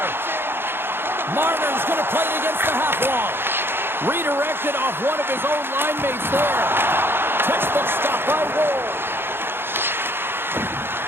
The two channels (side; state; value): left; late; 0.11 ms